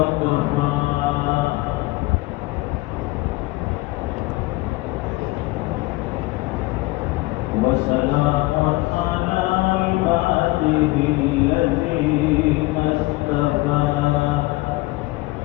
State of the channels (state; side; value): quieter; right; 21.1 dB